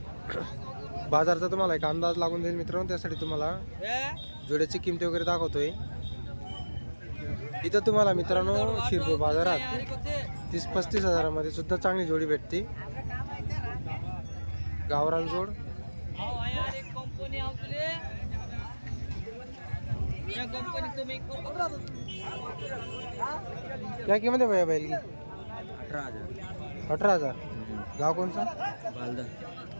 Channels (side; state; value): both; inverted; correlation -1.00